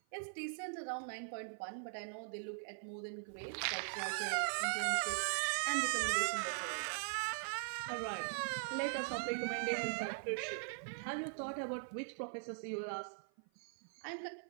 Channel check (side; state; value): left; silent; 50 dB below the other